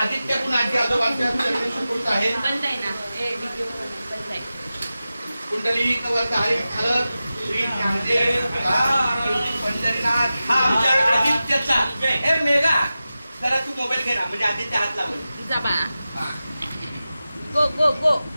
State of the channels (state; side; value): inverted; both; correlation -0.94